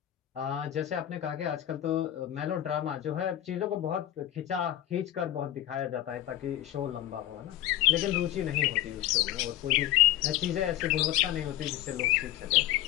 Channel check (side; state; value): right; quieter; 13.0 dB